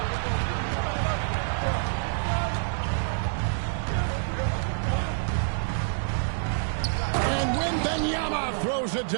And Wembanyama throws it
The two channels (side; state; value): left; silent; digital silence